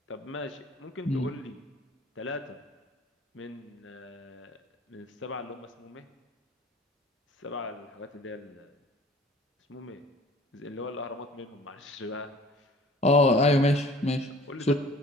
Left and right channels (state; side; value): normal; both; correlation 0.49